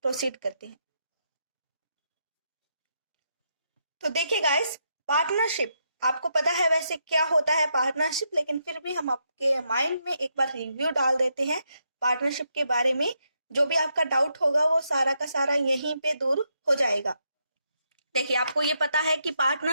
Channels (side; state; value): both; inverted; correlation -0.80